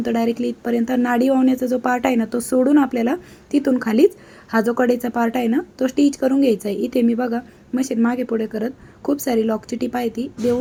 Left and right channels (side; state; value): both; identical; correlation 1.00